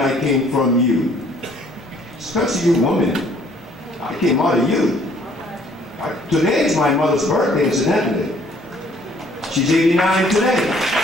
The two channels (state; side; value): normal; both; correlation 0.60